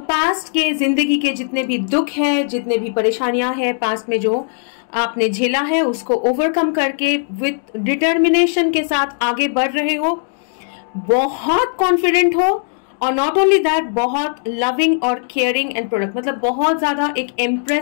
के जिंदगी के जितने भी दुख है, जितने भी परेशानियां हैं पास्ट में जो आपने झेला है, उसको ओवरकम करके विथ डिटर्मिनेशन के साथ आगे बढ़ रहे हो, बहुत कॉन्फिडेंट हो, और नॉट ओनली दैट बहुत लविंग और केयरिंग एंड प्रोडक्ट, मतलब बहुत ज्यादा एक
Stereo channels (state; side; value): silent; right; digital silence